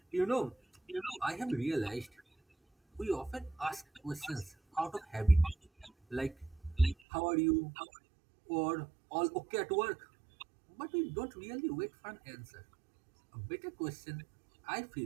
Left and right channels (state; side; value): drops out; left; at 7.0 s